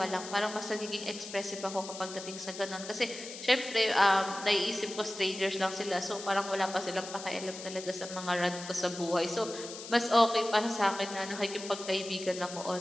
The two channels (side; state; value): left; noise; hiss, 11 dB below the sound